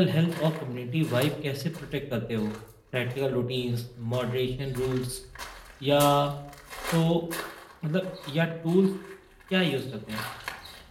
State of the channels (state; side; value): identical; both; correlation 1.00